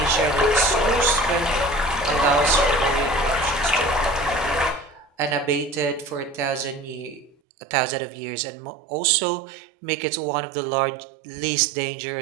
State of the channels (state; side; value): drops out; left; at 7.4 s